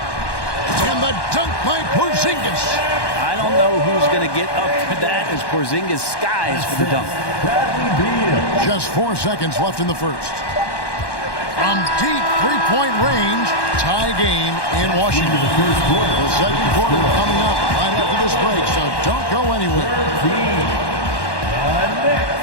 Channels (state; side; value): late; right; 1.1 ms